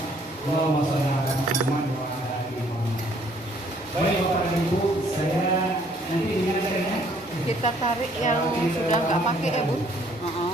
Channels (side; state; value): both; normal; correlation 0.63